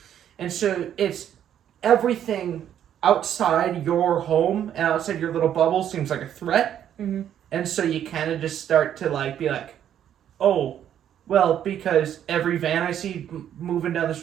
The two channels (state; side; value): quieter; left; 10.1 dB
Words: And so it's everything outside your home and outside your little bubble seems like a threat. Mm-hmm. And so you kind of just start to like be like, oh, well, because every van I see moving down the